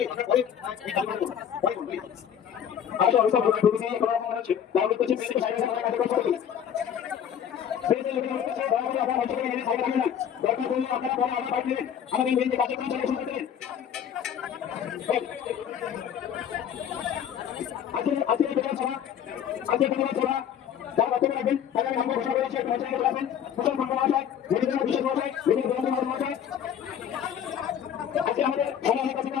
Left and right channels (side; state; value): right; quieter; 9.0 dB